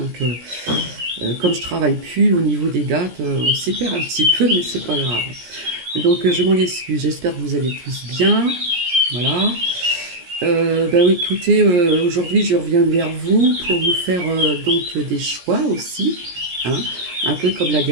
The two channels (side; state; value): left; late; 17 ms